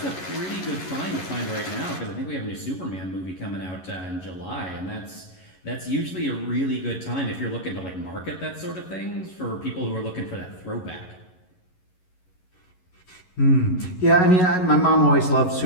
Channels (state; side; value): late; right; 11 ms